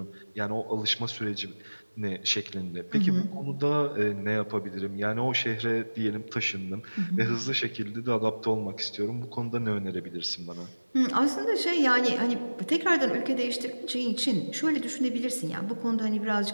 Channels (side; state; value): both; inverted; correlation -1.00